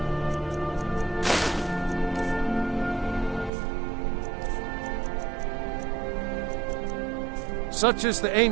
Such is the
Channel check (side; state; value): left; drops out; at 3.5 s